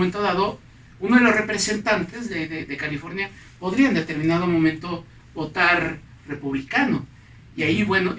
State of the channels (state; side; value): identical; both; correlation 1.00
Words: dado uno de los representantes de California podría en determinado momento votar republicano y ahí bueno